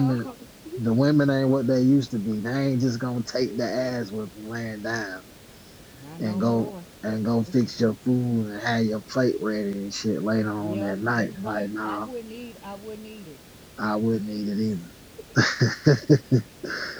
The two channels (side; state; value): both; identical; correlation 1.00